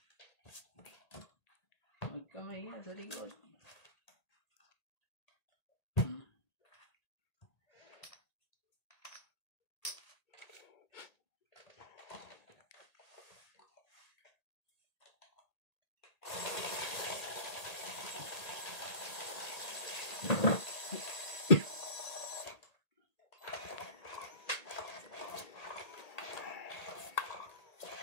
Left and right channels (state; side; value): late; right; 1.8 ms